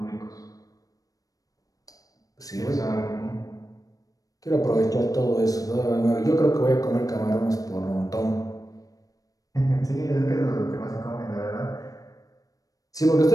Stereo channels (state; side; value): late; right; 0.17 ms